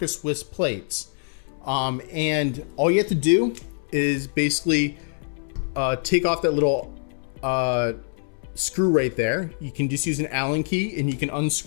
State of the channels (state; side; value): silent; right; 62 dB below the other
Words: Swiss plates. And all you have to do is basically take off that little screw right there. You can just use an Allen key and you can